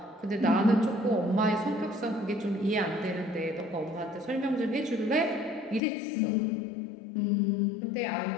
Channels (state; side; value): drops out; right; at 5.8 s